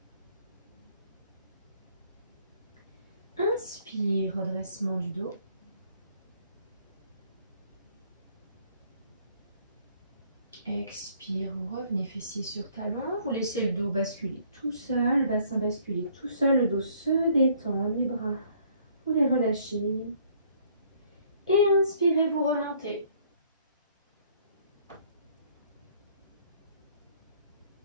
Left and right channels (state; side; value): inverted; both; correlation -0.61